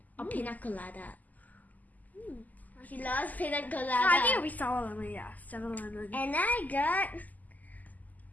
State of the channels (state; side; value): late; right; 0.080 ms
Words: or pina colada. She loves pina colada. No, I think it'll be sour lemon, yeah. Sour lemon. And